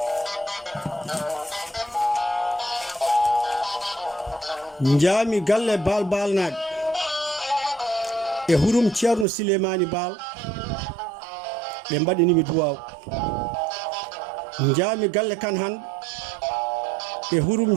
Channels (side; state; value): left; drops out; at 9.2 s